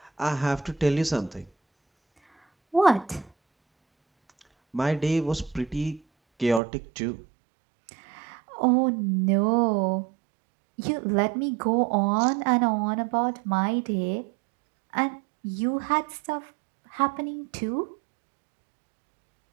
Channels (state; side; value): drops out; left; at 6.6 s